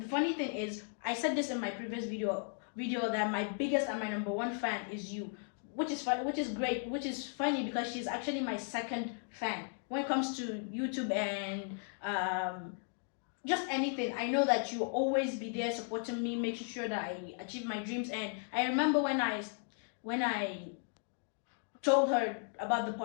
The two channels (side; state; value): right; silent; 54 dB below the other